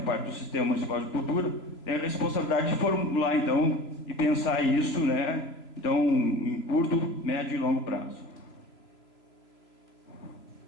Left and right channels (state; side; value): late; right; 3.0 ms